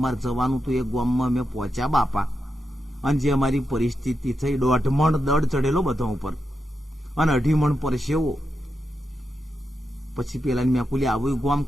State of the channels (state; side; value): normal; both; correlation 0.87